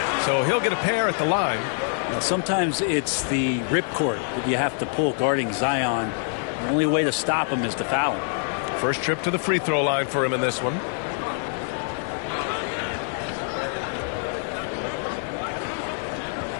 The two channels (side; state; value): right; silent; 62 dB below the other